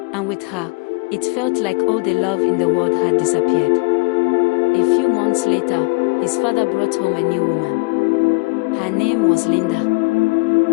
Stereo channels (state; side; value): quieter; right; 29.2 dB